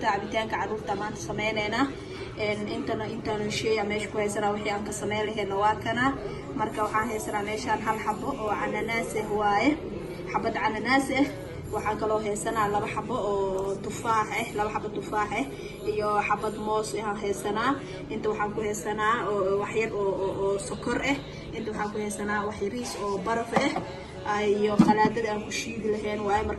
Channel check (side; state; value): both; identical; correlation 1.00